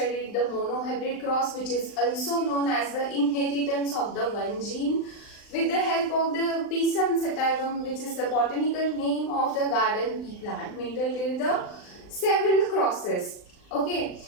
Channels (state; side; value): late; right; 39 ms